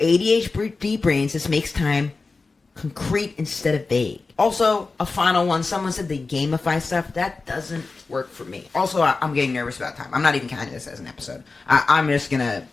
brains, this makes time concrete instead of vague. Also, a final one. Someone said they gamify stuff. That doesn't work for me. Also, I'm getting nervous about time. I'm not even counting this as an episode. I'm just going to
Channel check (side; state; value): right; quieter; 4.0 dB